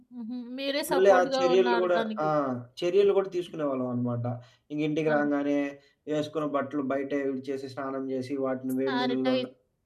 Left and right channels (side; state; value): both; identical; correlation 1.00